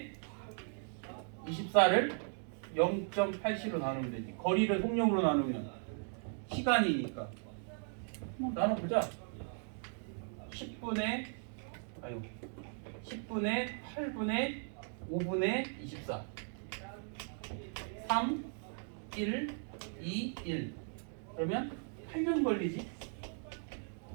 24를 0.87로 나누면 되지. 거리를 속력으로 나누면 시간이니까. 나눠보자. 10분의 8분의 5분의 24 3 1 2 1 그러면 8년 걸리지.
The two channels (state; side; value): silent; left; 53 dB below the other